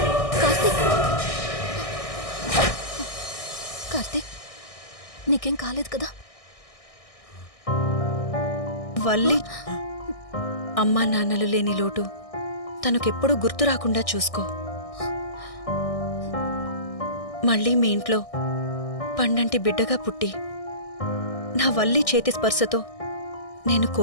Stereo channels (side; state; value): right; late; 1.6 ms